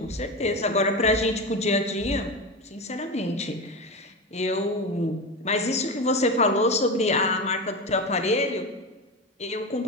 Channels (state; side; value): normal; both; correlation 0.21